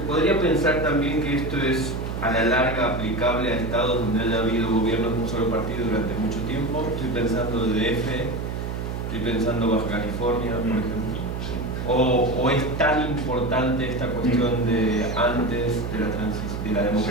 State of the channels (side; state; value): right; noise; hum, 4 dB below the sound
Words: pensar también que esto es a la larga aplicable a estados donde haya habido gobiernos de un solo partido durante mucho tiempo. Estoy pensando de DF, estoy pensando Baja California, por ejemplo. ¿O es tan importante esta cuestión de antes de la